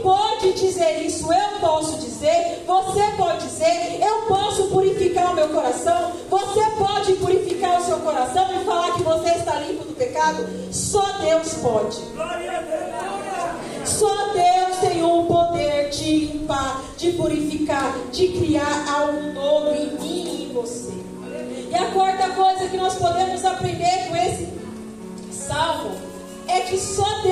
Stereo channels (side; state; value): both; identical; correlation 1.00